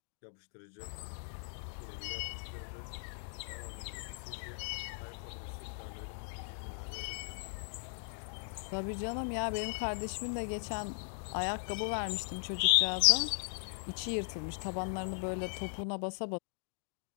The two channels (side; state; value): right; silent; digital silence